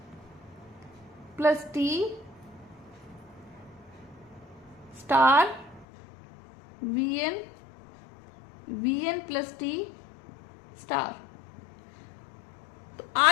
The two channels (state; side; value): drops out; right; at 5.9 s